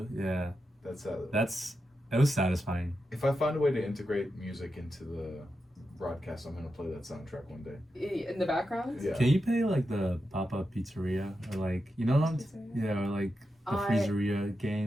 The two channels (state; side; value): normal; both; correlation 0.88